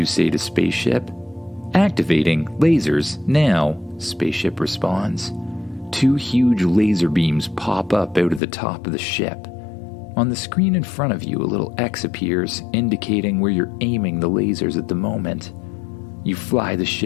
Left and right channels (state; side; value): drops out; right; at 8.4 s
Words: say to spaceship. Activating lasers now, spaceship responds. 2 huge laser beams pop up out of the top of the ship. On the screen in front of you, a little X appears, indicating where you're aiming the lasers at the moment. You fly the